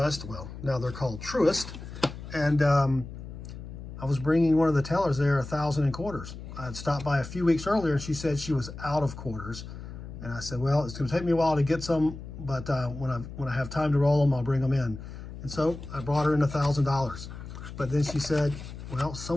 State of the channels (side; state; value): left; noise; hum, 11 dB below the sound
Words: well, now they're called Truist, and I was bringing one of the tellers there 1,000 in quarters. I had stopped by a few weeks earlier and she said she was out of quarters. And I said, well, it's gonna take me a while to get some, but when I have time to roll them, I'll bring them in. And so I brought her in $1,000. But then she said, well,